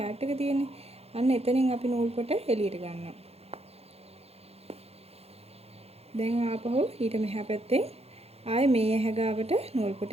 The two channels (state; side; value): late; left; 0.29 ms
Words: එක තියෙන්නේ. අන්න එතනින් අපි නූල් පොට එළියට ගන්නවා. දැන් ආපහු ඊට මෙහා පැත්තේ ආයේ මේ ඇහැ ගාවට නූල් පොට